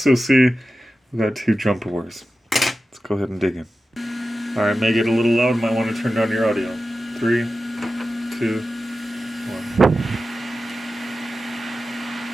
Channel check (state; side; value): normal; both; correlation 0.93